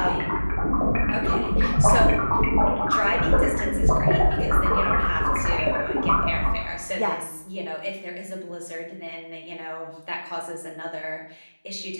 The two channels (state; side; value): inverted; both; correlation -1.00